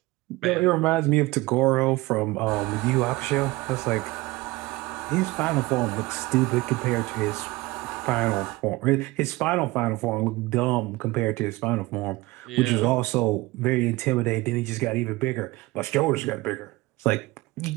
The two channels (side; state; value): left; quieter; 20.8 dB